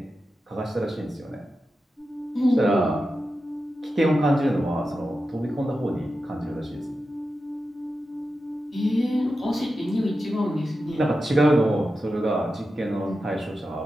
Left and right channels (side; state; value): both; normal; correlation 0.91